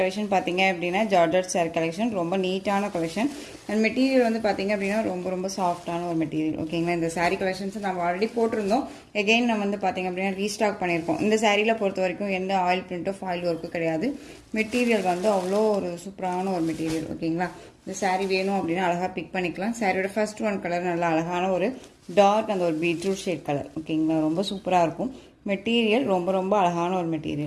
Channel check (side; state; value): both; identical; correlation 1.00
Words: பாத்தீங்க அப்படினா ஜார்ஜெட் saree கலெக்ஷன் ரொம்ப நீட்டான கலெக்ஷன் and மெட்டீரியல் வந்து பாத்தீங்க அப்படினா ரொம்ப சாஃப்ட்டான ஒரு மெட்டீரியல். ஓகேங்களா, இந்த saree கலெக்ஷன்ஸ் நம்ம ஆல்ரெடி போட்டுருந்தோம். அகைன் நம்ம வந்து பாத்தீங்க அப்படினா ரீஸ்டாக் பண்ணிருக்கோம். இந்த சாரீல பொறுத்த வரைக்கும் எந்த ஆயில் பிரிண்டோ ஃபாயில் வர்க்கோ கிடையாது. மெட்டீரியல் வந்து அவ்வளோ ஒரு சூப்பரான ஒரு மெட்டீரியல். ஓகேங்களா, இந்த saree வேணும் அப்படினா அழகா பிக் பண்ணிக்கலாம். சாரியோட ஃபர்ஸ்ட் ஒன் கலர் நல்ல அழகான ஒரு டார்க் அந்த ஒரு பீட்ரூட் ஷேட் கலர். ஓகேங்களா, ரொம்ப சூப்பரா இருக்கும். மெட்டீரியல் ரொம்ப அழகான ஒரு